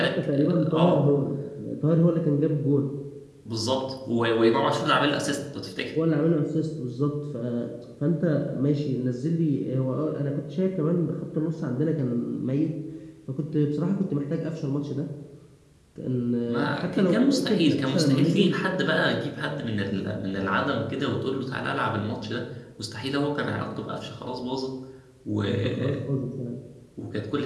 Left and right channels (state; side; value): identical; both; correlation 1.00